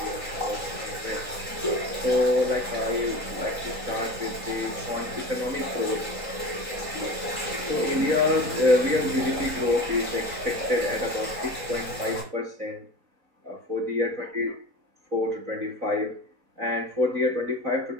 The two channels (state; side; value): late; left; 3.8 ms